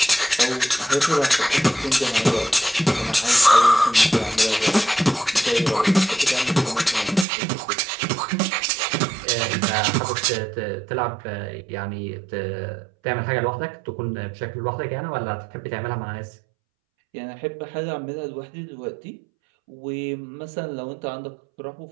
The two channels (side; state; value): left; drops out; at 7.2 s